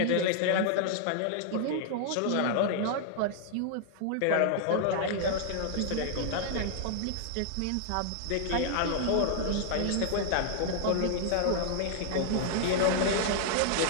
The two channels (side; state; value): both; different; correlation -0.01